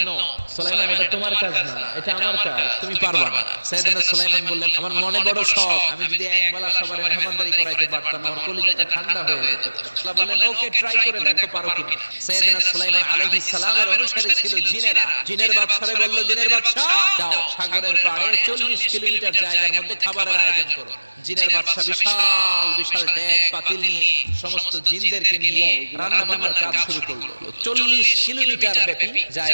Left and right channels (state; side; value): inverted; both; correlation -1.00